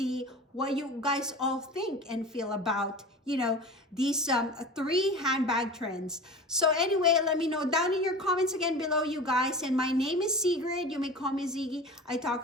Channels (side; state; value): both; normal; correlation 0.34